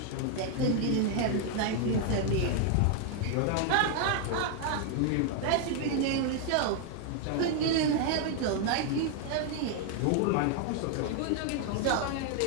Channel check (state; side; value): different; both; correlation 0.00